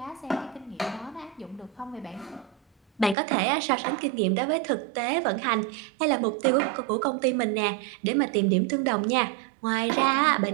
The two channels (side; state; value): left; drops out; at 3.2 s